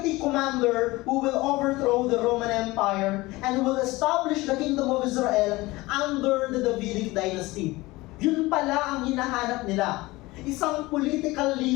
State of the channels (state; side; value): quieter; right; 20.7 dB